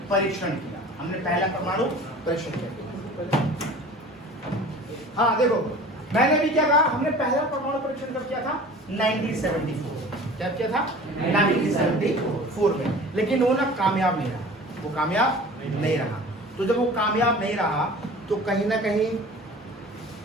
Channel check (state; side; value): normal; both; correlation 0.42